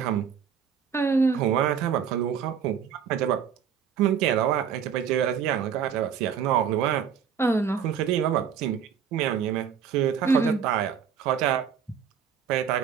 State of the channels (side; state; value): left; quieter; 7.6 dB